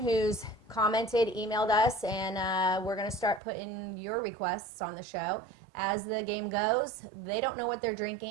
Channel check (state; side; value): drops out; left; at 3.4 s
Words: commented, emailed us, and we're going to start putting your requests on the show. As the game goes, they don't know what they're